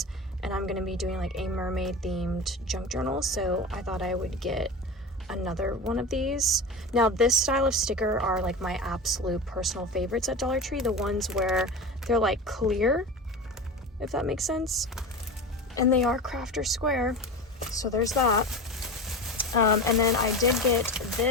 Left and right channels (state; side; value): normal; both; correlation 0.28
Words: And I'm going to be doing like a mermaid themed junk journal. So I thought I would get another one of these. Now this style of sticker are like my absolute personal favorites at Dollar Tree. The ones where they're like clear, if that makes sense. And they are crafter square. So there's that. And then I did get